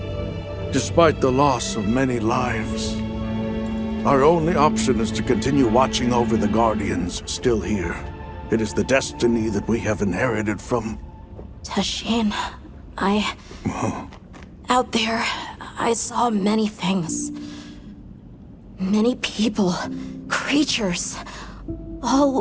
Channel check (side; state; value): both; identical; correlation 1.00